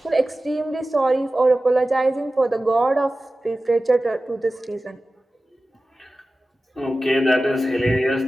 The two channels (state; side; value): normal; both; correlation 0.95